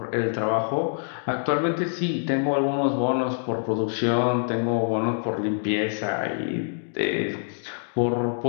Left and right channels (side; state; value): right; silent; digital silence